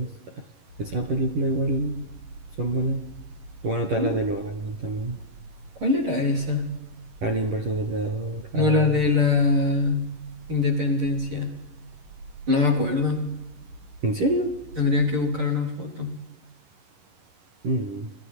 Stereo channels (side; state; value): left; late; 11 ms